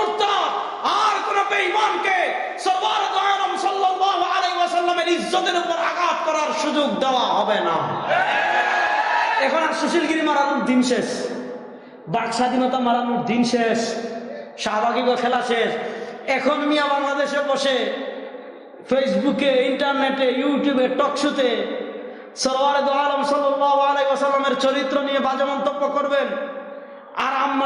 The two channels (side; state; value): both; identical; correlation 1.00